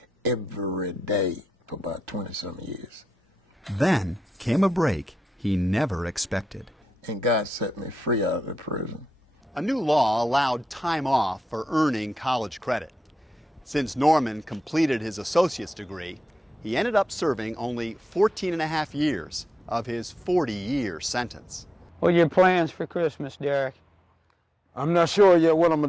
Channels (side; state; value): both; normal; correlation 0.89